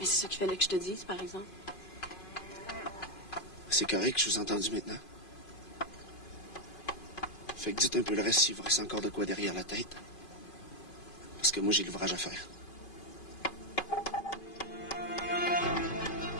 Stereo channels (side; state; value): right; late; 2.5 ms